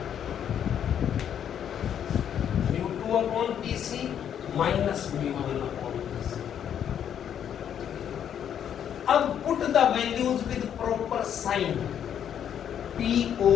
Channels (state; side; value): quieter; right; 9.2 dB